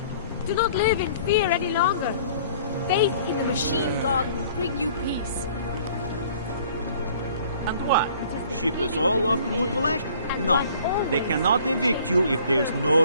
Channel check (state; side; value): inverted; both; correlation -0.54